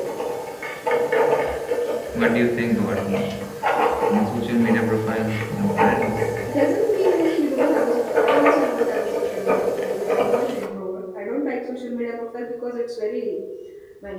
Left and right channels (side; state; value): both; identical; correlation 1.00